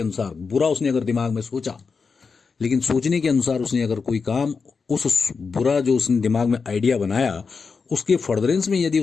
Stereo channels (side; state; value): right; quieter; 5.1 dB